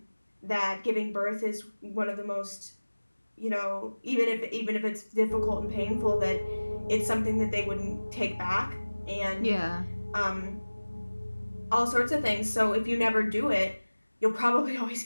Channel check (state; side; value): inverted; both; correlation -1.00